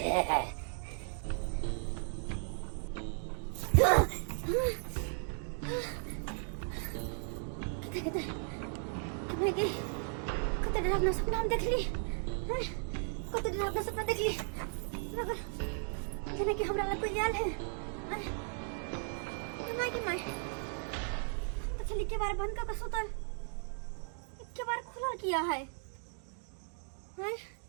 कते डरावना सपना हम देखली कते डरावना सपना देखली जेना कि हमरा लग कोई आयल है माय तो चली के बार बंद करके सुतल के बार खुला किया है हैं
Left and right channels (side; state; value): left; silent; 54 dB below the other